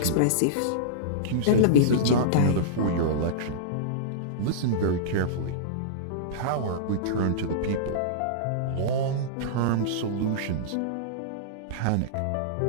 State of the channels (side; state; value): both; different; correlation -0.04